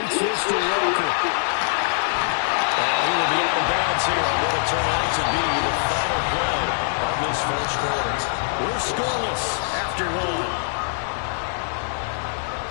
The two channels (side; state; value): right; silent; digital silence